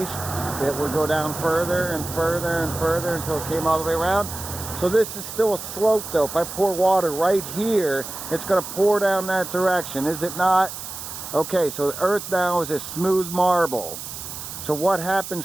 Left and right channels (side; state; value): right; noise; hiss, 9 dB below the sound